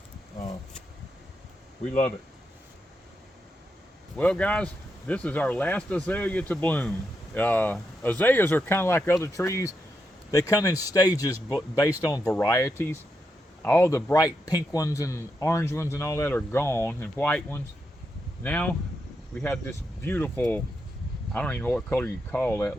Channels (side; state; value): both; normal; correlation 0.84